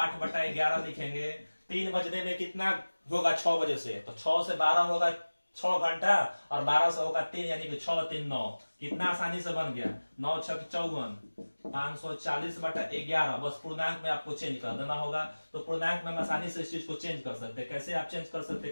लिखेंगे। 3 बजने में कितना होगा 6 बजे से, तो 6 से 12 होगा 6 घंटा, और 12 से होगा 3, यानी कि 6 3 9, कितना आसानी से बन गया, 9 6 54, 540/11। बस पूर्णांक में आपको चेंज कर देना होगा। तो पूर्णांक में हम आसानी से इस चीज को चेंज कर सकते हैं। कैसे आप चेंज कर सकते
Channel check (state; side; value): inverted; both; correlation -1.00